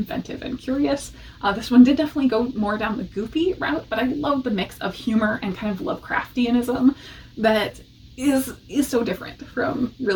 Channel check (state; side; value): identical; both; correlation 1.00